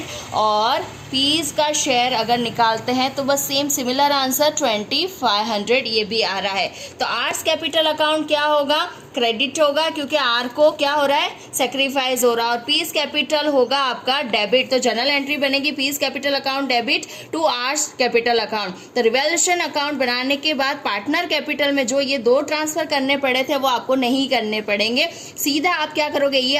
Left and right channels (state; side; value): identical; both; correlation 1.00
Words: और पीस का शेयर अगर निकालते हैं तो बस सेम सिमिलर आंसर 2,500 ये भी आ रहा है। तो आर्स कैपिटल अकाउंट क्या होगा, क्रेडिट होगा, क्योंकि आर को क्या हो रहा है सैक्रिफाइस हो रहा है। और पीस कैपिटल होगा आपका डेबिट, तो जनरल एंट्री बनेगी P's capital account debit to R's capital account. तो रिवैल्यूएशन अकाउंट बनाने के बाद पार्टनर कैपिटल में जो ये 2 ट्रांसफर करने पड़े थे वो आपको नहीं करने पड़ेंगे। सीधा आप क्या करोगे, ये